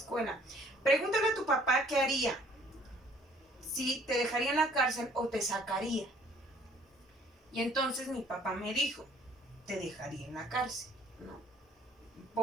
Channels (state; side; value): normal; both; correlation 0.57